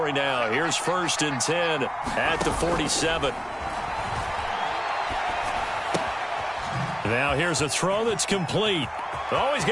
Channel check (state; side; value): identical; both; correlation 1.00